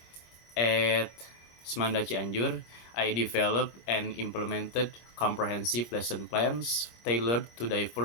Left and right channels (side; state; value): right; late; 26 ms